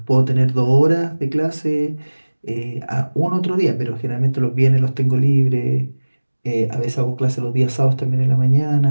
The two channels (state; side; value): inverted; both; correlation -1.00